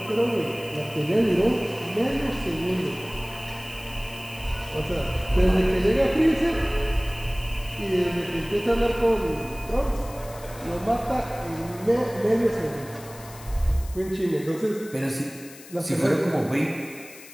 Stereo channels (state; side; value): noise; left; hiss, 18 dB below the sound